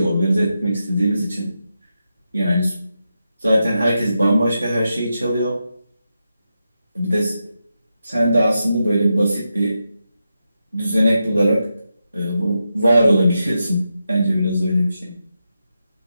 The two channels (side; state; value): both; inverted; correlation -0.88